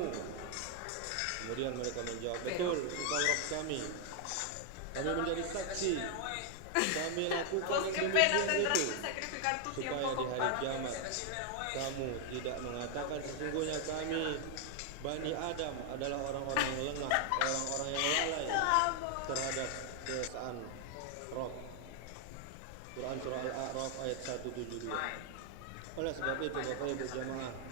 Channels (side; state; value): both; different; correlation 0.00